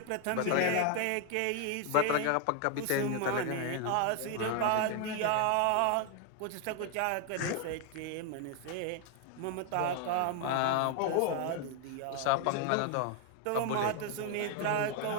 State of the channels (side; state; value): both; different; correlation 0.00